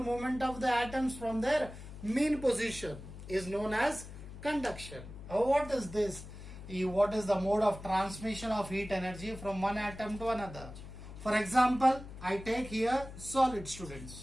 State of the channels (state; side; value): noise; left; hum, 13 dB below the sound